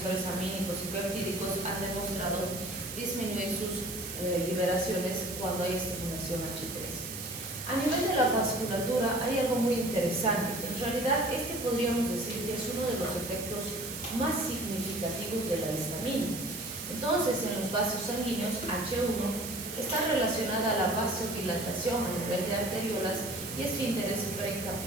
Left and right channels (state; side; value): noise; right; hiss, 8 dB below the sound